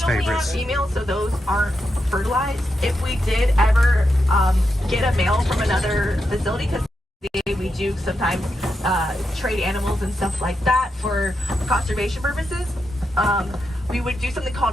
favorites. We only have females, so those aren't fertilized. If we did ever get a male from another facility, because we do sometimes trade animals and stuff like that for conservation purposes, we would do something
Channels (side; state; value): both; normal; correlation 0.85